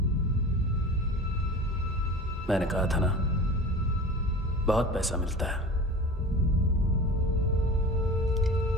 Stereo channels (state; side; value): normal; both; correlation 0.35